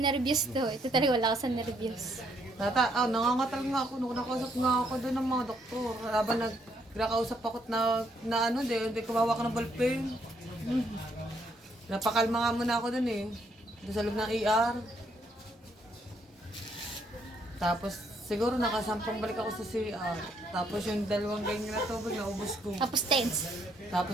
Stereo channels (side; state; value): both; normal; correlation 0.71